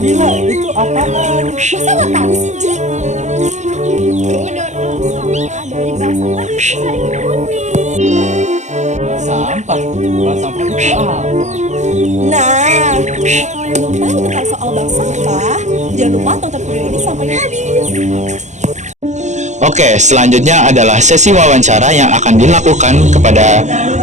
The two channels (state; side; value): late; left; 0.34 ms